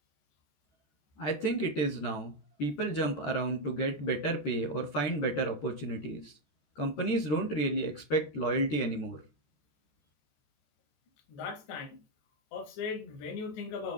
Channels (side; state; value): right; late; 14 ms